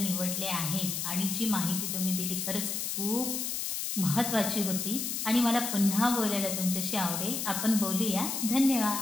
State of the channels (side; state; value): left; noise; hiss, 2 dB below the sound